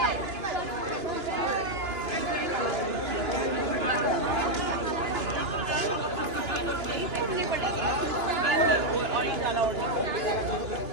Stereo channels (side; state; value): left; late; 2.9 ms